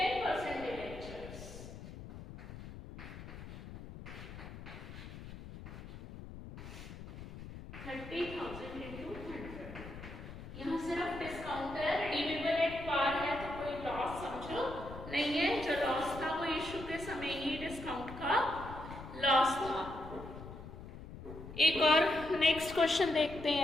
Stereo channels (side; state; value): left; noise; rumble, 12 dB below the sound